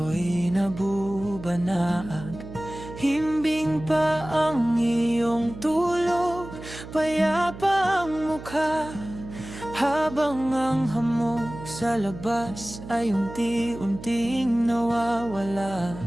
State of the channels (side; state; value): right; noise; hum, 13 dB below the sound